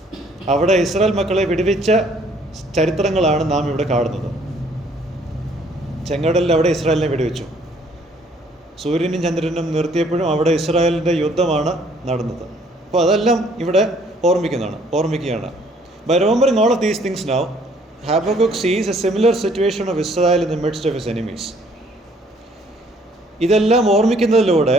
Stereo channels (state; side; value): normal; both; correlation 0.62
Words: അവിടെ ഇസ്രായേൽ മക്കളെ വിടുവിച്ച ചരിത്രങ്ങളാണ് നാം ഇവിടെ കാണുന്നത്. ചെങ്കടലിൽ അവിടെ ഇസ്രായേലിനെ വിടുവിച്ചു. സൂര്യനും ചന്ദ്രനും നിർത്തിയപ്പോഴും അവിടെ ഇസ്രായേലിൻ്റെ യുദ്ധമാണ് നടന്നത്. അപ്പോൾ അതെല്ലാം ഇവിടെ ഓർമ്മിക്കുകയാണ്. By remembering all of these things now, Habakkuk sees a similar situation of Israel in the midst of his enemies. ഇതെല്ലാം ഓർമ്മിക്കുന്നതിലൂടെ